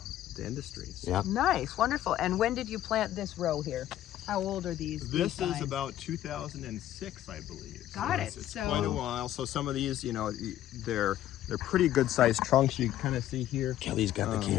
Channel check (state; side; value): quieter; right; 12.7 dB